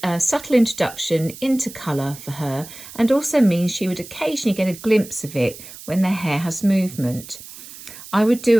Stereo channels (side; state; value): right; noise; hiss, 16 dB below the sound